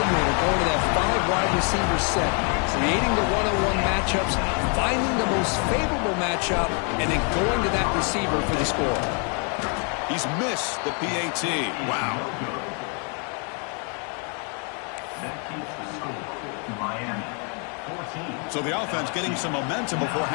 going to that 5 wide receiver set, creating the one-on-one matchups, finding the most favorable matchup, and then going to that receiver for the score. He's missed the PAT. Wow. So the offense getting some momentum before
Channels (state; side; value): quieter; right; 38.5 dB